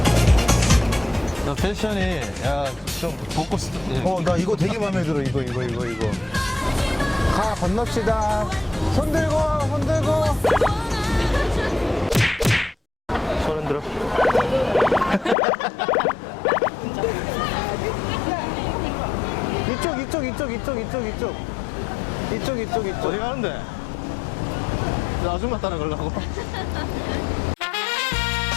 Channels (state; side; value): drops out; right; at 15.4 s